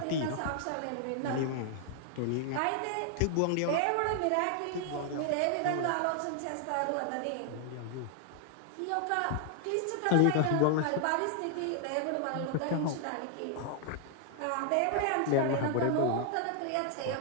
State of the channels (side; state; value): both; different; correlation 0.00